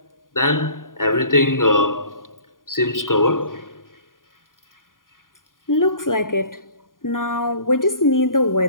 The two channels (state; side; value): late; right; 0.90 ms